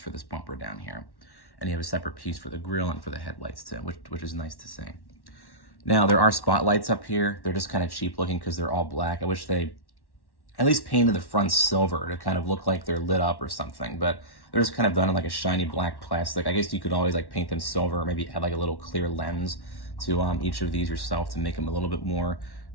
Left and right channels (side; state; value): right; late; 1.1 ms